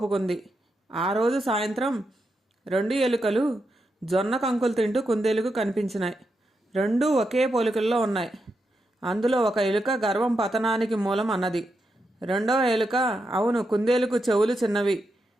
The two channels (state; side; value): normal; both; correlation 0.85